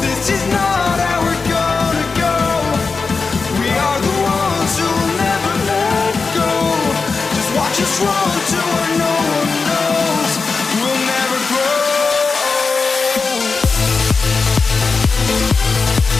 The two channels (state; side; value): quieter; right; 4.5 dB